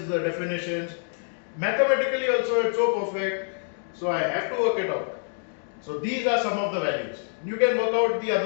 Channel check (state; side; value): silent; right; digital silence